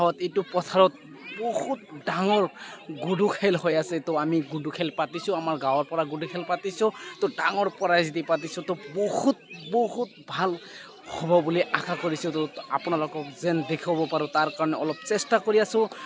এইটো পথাৰত বহুত ডাঙৰ গুডু খেল হৈ আছে। তো আমি গুডু খেল পাতিছোঁ, আমাৰ গাঁৱৰ পৰা গুডু খেল পাতিছোঁ। তো ডাঙৰ প্ৰাইজ দি পাতিছোঁ। তো বহুত ভাল হ'ব বুলি আশা কৰিছোঁ। তো আপোনালোকক যেন দেখাব পাৰোঁ তাৰ কাৰণে অলপ চেষ্টা কৰি আছোঁ।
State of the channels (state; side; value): identical; both; correlation 1.00